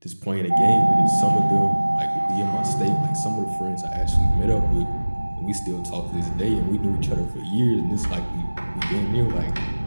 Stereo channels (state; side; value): inverted; both; correlation -1.00